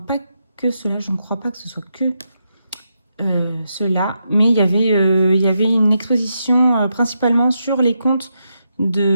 que cela, je ne crois pas que ce soit que cela, mais il y avait une exposition principalement sur les contes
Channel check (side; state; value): both; inverted; correlation -0.83